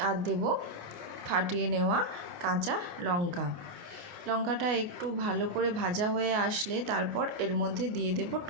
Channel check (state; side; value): late; left; 28 ms